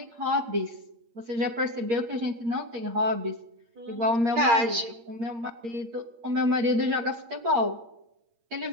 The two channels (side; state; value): left; late; 8.6 ms